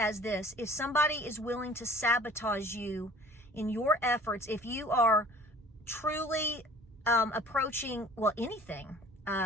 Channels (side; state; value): both; normal; correlation 0.48